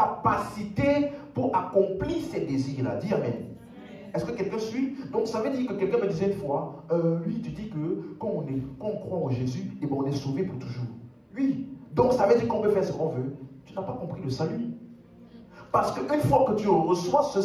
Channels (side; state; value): both; identical; correlation 1.00